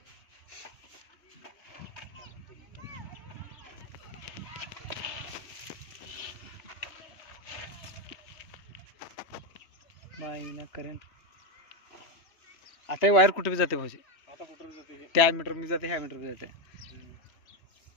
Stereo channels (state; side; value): late; right; 3.1 ms